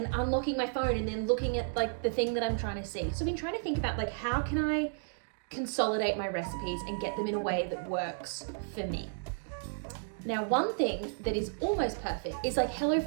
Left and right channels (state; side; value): silent; left; digital silence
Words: unlocking my phone and then looking at like the thing that I'm trying to see. So I've been trying to think about like, how can I consolidate my recipes and get them in a way that works for me. Now, one thing that is almost perfect is like